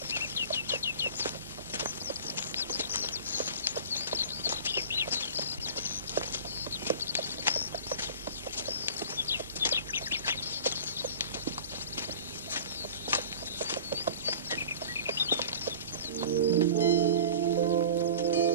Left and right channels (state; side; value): inverted; both; correlation -0.39